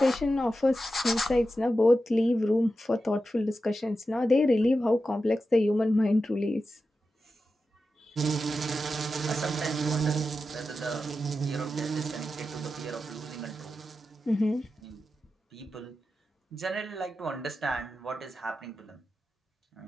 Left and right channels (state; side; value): normal; both; correlation 0.91